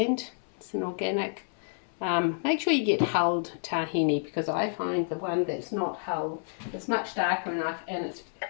It's an organic. Make sure you get hulled tahini, because I find the one that's not hulled is much darker enough and it's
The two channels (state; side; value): silent; right; 58 dB below the other